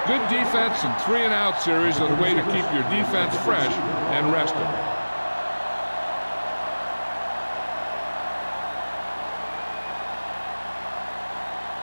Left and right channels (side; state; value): both; inverted; correlation -1.00